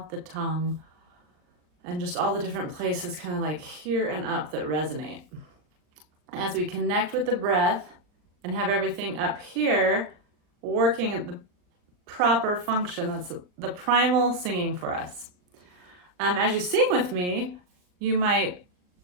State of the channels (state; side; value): late; left; 39 ms